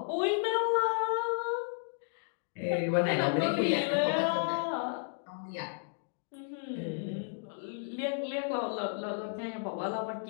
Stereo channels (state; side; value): silent; right; digital silence